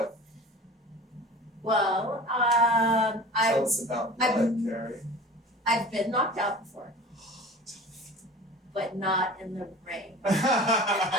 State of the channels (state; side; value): normal; both; correlation 0.39